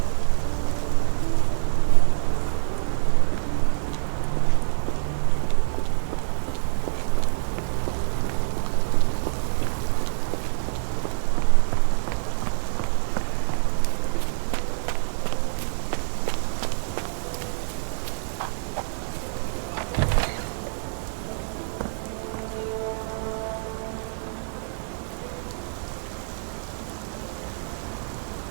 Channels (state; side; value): silent; left; 61 dB below the other